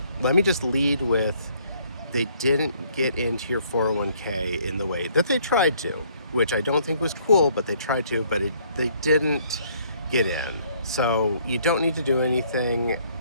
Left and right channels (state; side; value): inverted; both; correlation -0.64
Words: Let me just lead with, they didn't get into your 401k in the way that they tried to, which I don't think was cool, but they tried to, but they didn't get in. So you don't need to do anything